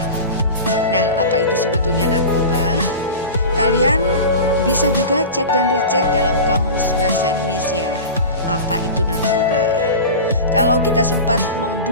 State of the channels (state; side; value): inverted; both; correlation -0.30